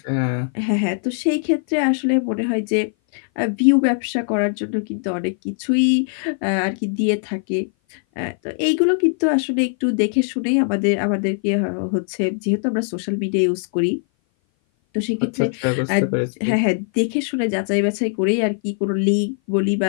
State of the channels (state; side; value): silent; right; 58 dB below the other